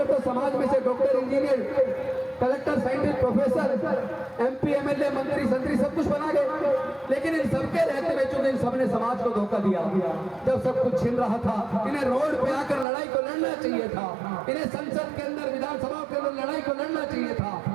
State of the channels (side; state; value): left; drops out; at 12.9 s